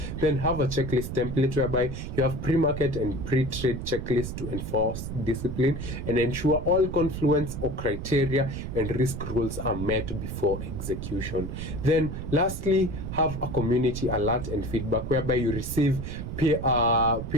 Then have a checklist template, whereby you have pre-market and pre-trade checklists to enforce discipline and ensure all confluence or criteria and risk rules are met before execution. Then lastly, have a community alert and feedback, whereby you receive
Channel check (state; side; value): noise; right; rumble, 6 dB below the sound